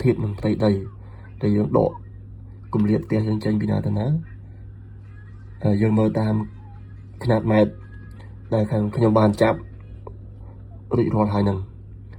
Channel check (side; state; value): both; identical; correlation 1.00